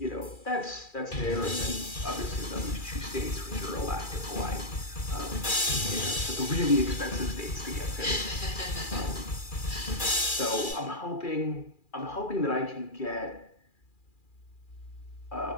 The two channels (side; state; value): right; late; 2.4 ms